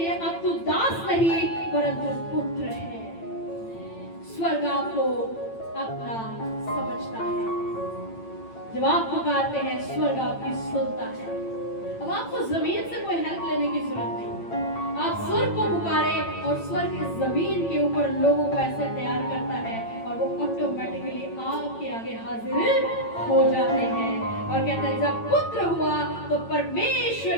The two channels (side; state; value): right; late; 8.9 ms